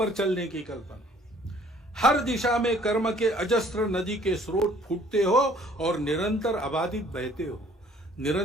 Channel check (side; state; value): both; normal; correlation 0.57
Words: चलने की कल्पना, हर दिशा में कर्म के अजस्त्र नदी के स्रोत फूटते हो और निरंतर अबाधित बहते हो,